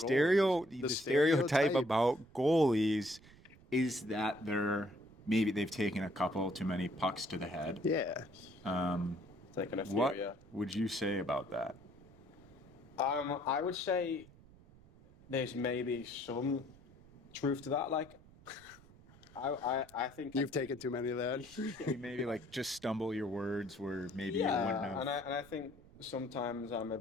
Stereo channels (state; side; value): noise; right; rumble, 23 dB below the sound